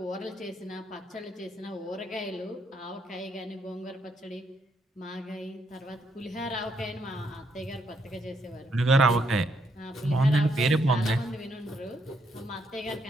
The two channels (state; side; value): normal; both; correlation 0.75